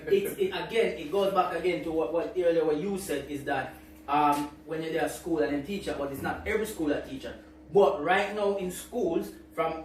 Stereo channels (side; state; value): both; identical; correlation 1.00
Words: it goes back again to what earlier what you said is that when you're there at school and then teacher, but it's not every school that teacher. But right now in schools, from